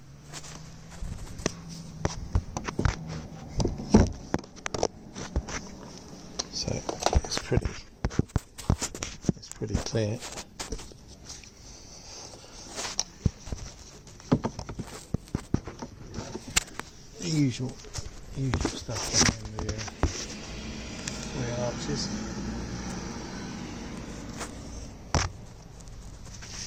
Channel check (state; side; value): identical; both; correlation 1.00